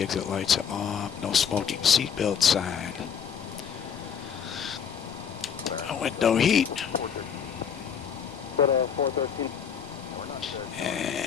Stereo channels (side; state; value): right; quieter; 7.6 dB